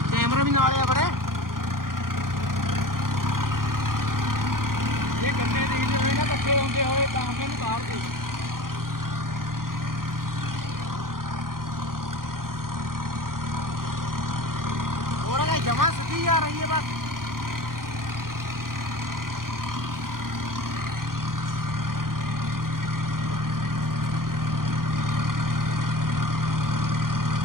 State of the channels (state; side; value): late; left; 0.91 ms